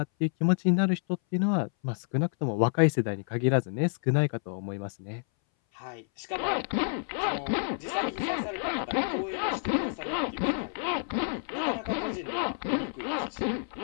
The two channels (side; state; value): right; silent; 58 dB below the other